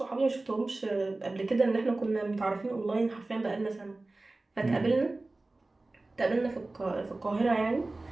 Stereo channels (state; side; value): quieter; left; 3.1 dB